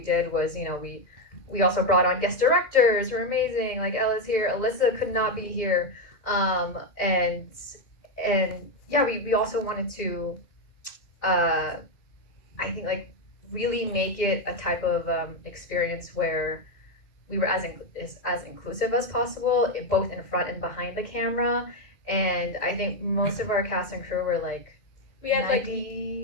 did was, we also brought on guest directors who are amazing, like Ella's here, Alyssa could not be here, and yeah, we also wanted to, I think, like, really make it a type of experience where we were as inclusive as possible, both in front and behind the camera. And I think most of our cast and crew were like, we had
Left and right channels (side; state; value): right; late; 2.1 ms